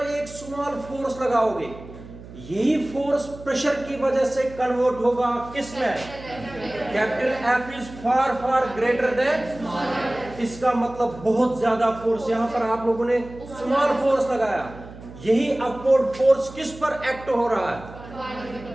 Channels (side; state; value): right; noise; hum, 16 dB below the sound